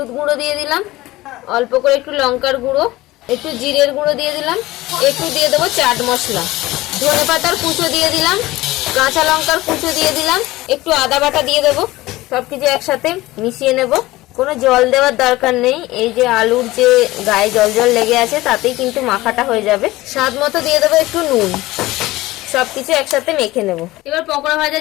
গুঁড়ো দিয়ে দিলাম, অল্প করে একটু লঙ্কার গুঁড়ো, একটু জিরের গুঁড়ো দিয়ে দিলাম, একটু দিয়ে দেবো চাট মশলা, ধনে পাতার কুচো দিয়ে দিলাম, কাঁচা লঙ্কার কুচো দিয়ে দিলাম, একটু আদা বাটা দিয়ে দেবো। সবকিছু একসাথে মিশিয়ে নেব। কোনো জল দেওয়ার দরকার নেই, এই যে আলুর যে গায়ে জল জল লেগে আছে তাতেই কিন্তু মাখাটা হয়ে যাবে। স্বাদ মতো দিয়ে দেবো একটু নুন। সবকিছু একসাথে মেখে নেব। এবার পকোড়া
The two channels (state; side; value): quieter; right; 18.5 dB